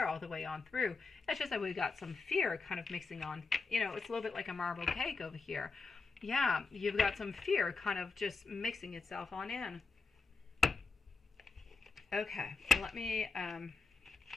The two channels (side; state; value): right; quieter; 4.2 dB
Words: all the way on through. It's just that we've got some fear kind of mixing on. You know, it's a little bit like a marble cake over here. Yeah, you've got some fear kind of just mixing itself on in. Okay, let me